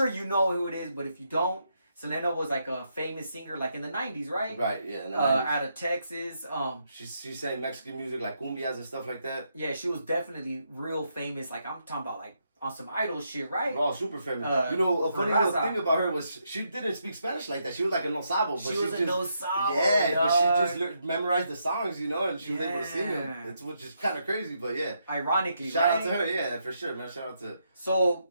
you know who it is. But if you don't, Selena was like a famous singer, like in the '90s, right? Right. Yeah. In the 90s. Out of Texas. She sang Mexican music like cumbias and stuff like that. Yeah, she was definitely real famous. Like I'm talking about like on some idol shit, right? Oh, super famous. A funny little thing about her was she didn't speak Spanish like that. She was like a no sabo. But she was a no sabo. Yeah, but she just memorized the songs, and she was able to sing them. It's which is kind of crazy, but yeah. Ironically, shout out to her, yeah, for sure, man. Shout out to. So,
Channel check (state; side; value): inverted; both; correlation -0.79